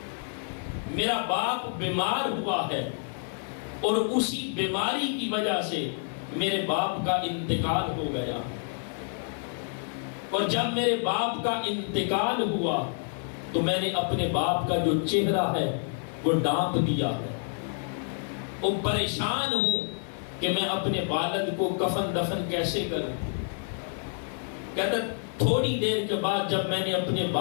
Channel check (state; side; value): silent; right; 59 dB below the other